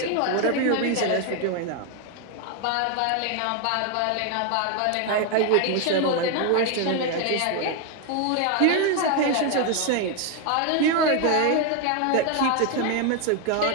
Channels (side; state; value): both; different; correlation 0.01